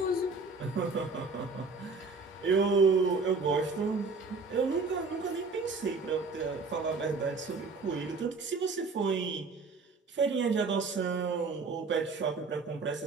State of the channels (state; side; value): quieter; left; 4.1 dB